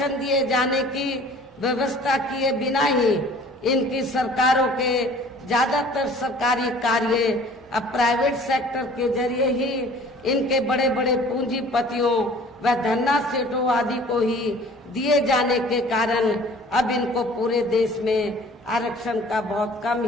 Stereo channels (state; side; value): normal; both; correlation 0.49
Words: दिए जाने की व्यवस्था किए बिना ही इनकी सरकारों के ज्यादातर सरकारी कार्य अब प्राइवेट सेक्टर के जरिए ही इनके बड़े बड़े पूंजीपतियों व धन्ना सेठों आदि को ही दिए जाने के कारण अब इनको पूरे देश में आरक्षण का बहुत कम